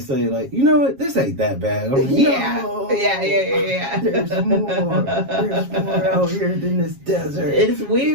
say like, you know what, this ain't that bad. I'm like, yeah. No, Yeah. There's more out here than this desert. It's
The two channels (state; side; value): late; left; 7.3 ms